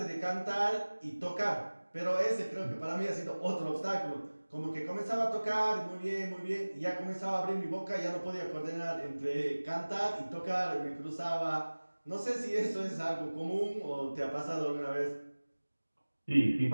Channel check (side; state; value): both; inverted; correlation -1.00